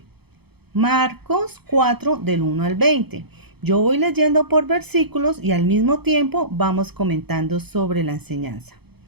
Marcos 4 del 1 al 20. Yo voy leyendo por versículos y al mismo tiempo vamos comentando sobre la enseñanza.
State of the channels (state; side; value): late; left; 0.97 ms